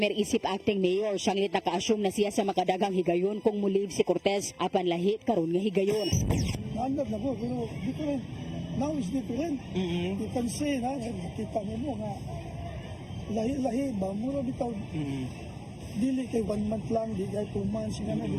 isip acting mayor. Sanglit naka-assume na siya sa makadagang higayon kung mulive si Cortez apan lahit karon nga higayon. Naandad na ko, pero different. Now is different. You can say na, nakita mo nga, lahi-lahi ba, mura bitaw. Dili kay 1 month lang, di kay 2 months, nga na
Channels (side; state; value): both; identical; correlation 1.00